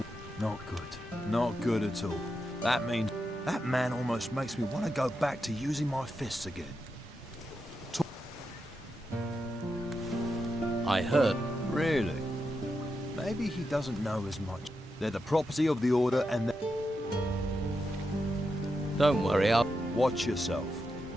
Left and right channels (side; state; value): both; normal; correlation 0.86